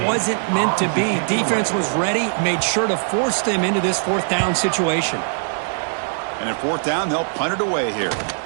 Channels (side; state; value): left; silent; 65 dB below the other